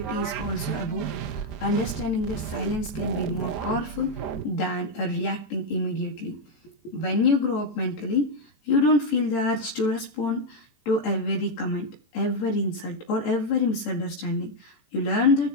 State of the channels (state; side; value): late; right; 18 ms